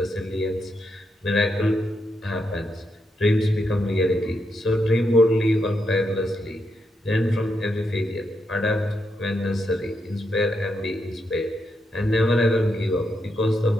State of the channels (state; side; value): normal; both; correlation 0.81